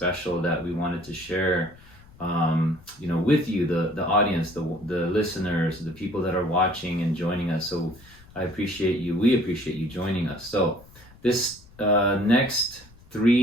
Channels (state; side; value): noise; left; rumble, 24 dB below the sound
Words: that we wanted to share, with you, the audience, the listeners, the people that are watching and joining us. So we appreciate you joining us. So this next